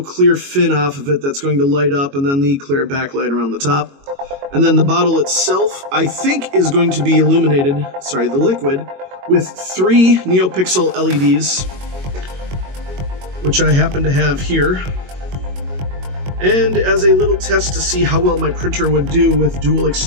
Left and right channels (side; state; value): left; late; 22 ms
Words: clear fin off of it that's going to light up, and then the clear backlight around the top. And then the bottle itself, I think, is going to be illuminated, the liquid, with 3 NeoPixel LEDs, which I happen to have here. And as a little test to see how well my printer would do with dual